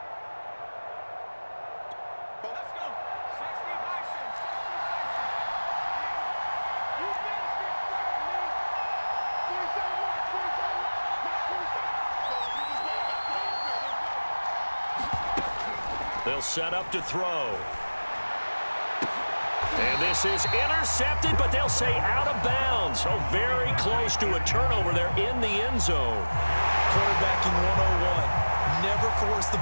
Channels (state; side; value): inverted; both; correlation -1.00